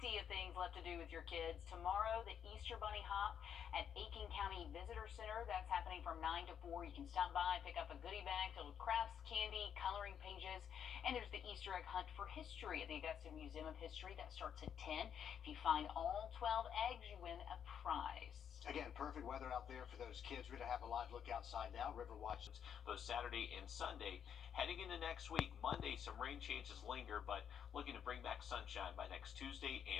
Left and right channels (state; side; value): quieter; right; 8.4 dB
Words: of things left to do with your kids. Tomorrow, the Easter Bunny Hop at Aiken County Visitor Visitor Center. That's happening from 9 to 4. You can stop by, pick up a goodie bag filled with crafts, candy, coloring pages, and there's the Easter egg hunt for history at the Augusta Museum of History. That starts at 10. If you find all 12 eggs, you win a prize. Again, perfect weather out there for those kids. We're going to have a live look outside now. River Watch. Both Saturday and Sunday. Heading into next week, Monday, some rain chances linger, but looking to bring back sunshine by next Tuesday